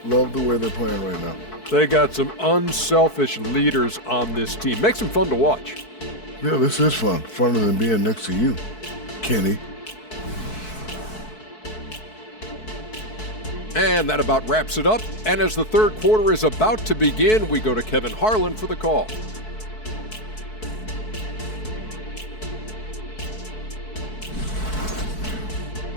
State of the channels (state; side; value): late; right; 4.6 ms